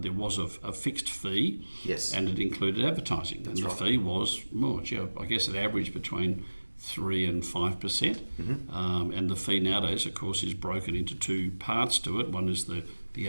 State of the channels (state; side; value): inverted; both; correlation -1.00